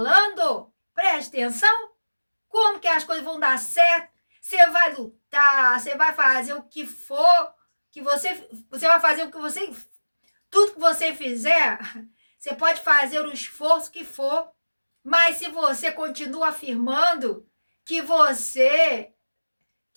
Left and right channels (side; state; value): both; inverted; correlation -1.00